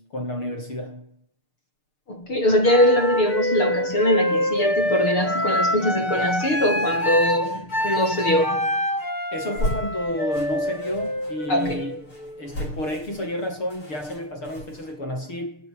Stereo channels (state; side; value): late; right; 6.6 ms